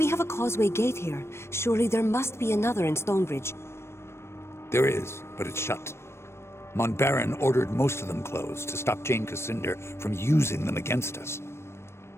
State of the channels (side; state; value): right; late; 0.13 ms